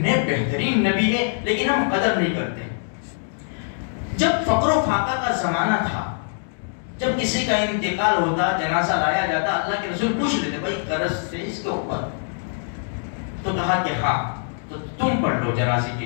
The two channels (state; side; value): silent; right; digital silence